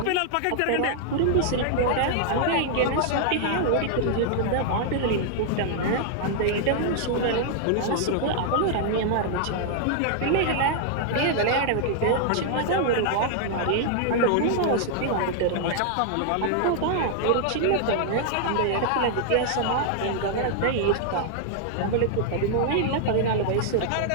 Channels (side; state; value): both; different; correlation -0.01